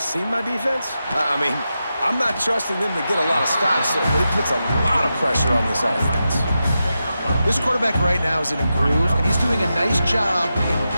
my defense? I mean, I'm not trusting them to get a lot of stops, but it puts a lot of pressure on this offense. This quarterback right now is in a groove, and he's doing a nice job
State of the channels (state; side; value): inverted; both; correlation -0.89